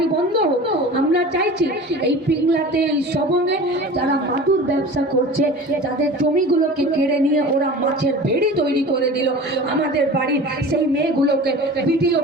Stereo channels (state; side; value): normal; both; correlation 0.38